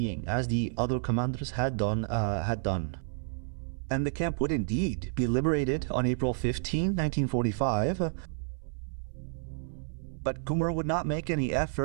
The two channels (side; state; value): left; silent; 58 dB below the other